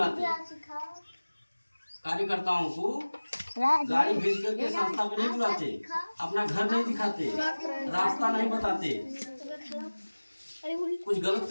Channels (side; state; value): both; inverted; correlation -1.00